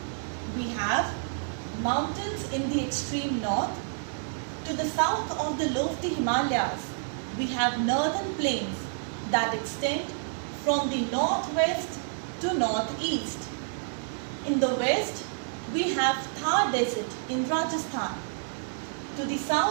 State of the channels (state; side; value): silent; left; digital silence